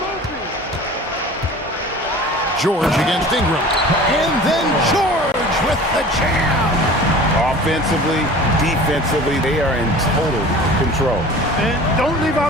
George against Ingram. And then George with the jam. Offensively, defensively, they are in total control. And don't leave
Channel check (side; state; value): both; normal; correlation 0.41